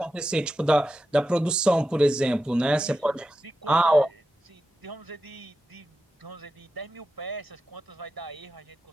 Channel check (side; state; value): both; normal; correlation 0.90